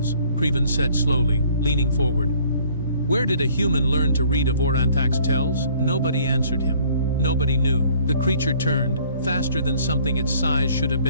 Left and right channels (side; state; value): both; inverted; correlation -0.58